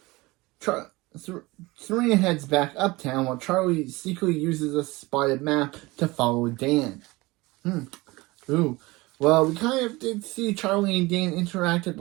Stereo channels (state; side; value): quieter; left; 21.9 dB